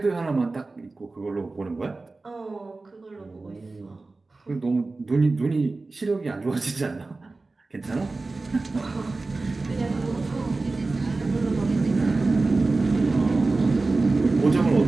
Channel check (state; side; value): quieter; left; 3.5 dB